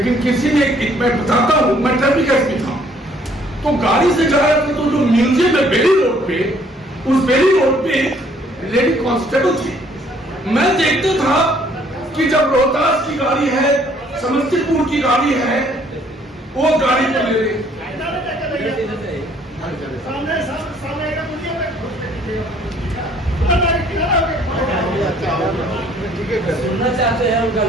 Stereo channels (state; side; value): normal; both; correlation 0.62